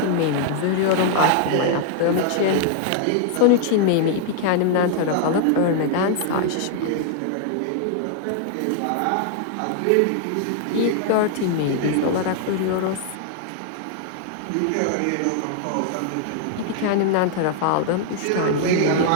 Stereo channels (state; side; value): different; both; correlation 0.00